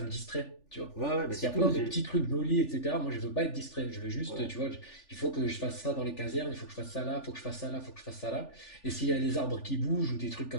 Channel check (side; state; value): right; late; 3.4 ms